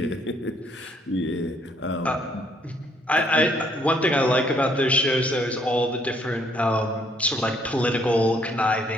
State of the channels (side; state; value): both; normal; correlation 0.67